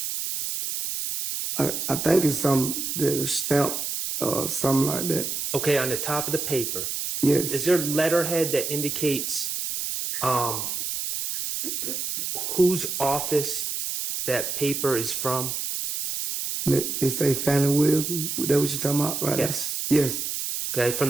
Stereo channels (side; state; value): right; noise; hiss, 3 dB below the sound